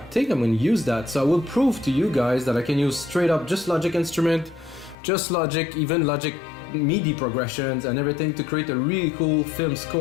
think I'm going to use that. So I will prove to you guys that I can use straight up just Logic instrument, just Logic, even Logic MIDI progressions and everything to create a really cool film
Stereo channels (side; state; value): right; drops out; at 5.0 s